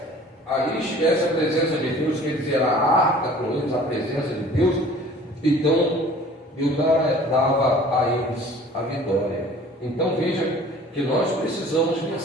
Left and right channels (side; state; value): both; normal; correlation 0.48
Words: ali estivesse a presença de Deus, quer dizer, a arca com eles, a presença de Deus, então Deus dava a eles a vitória. Então veja que nós precisamos